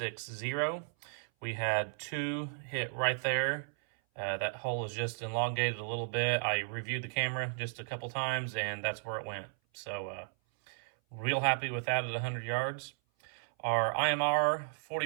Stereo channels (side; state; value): left; silent; 55 dB below the other